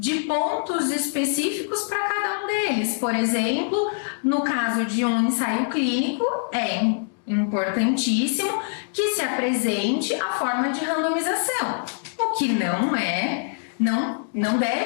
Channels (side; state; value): right; silent; digital silence